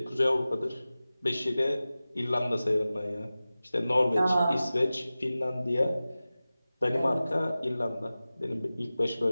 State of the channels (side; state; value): both; inverted; correlation -0.96